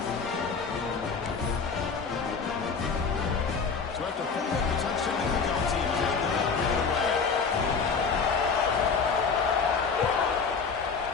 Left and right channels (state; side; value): quieter; right; 5.3 dB